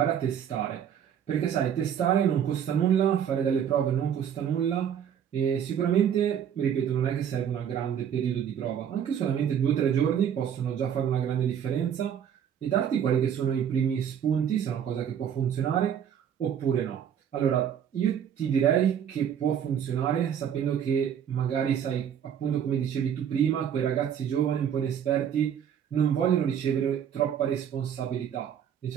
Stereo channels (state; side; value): quieter; left; 8.8 dB